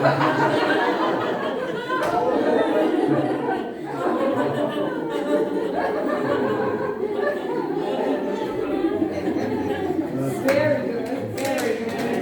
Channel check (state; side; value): identical; both; correlation 1.00